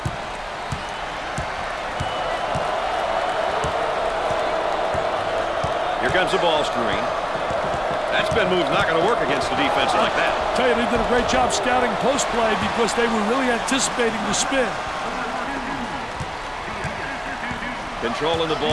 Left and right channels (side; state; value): both; identical; correlation 1.00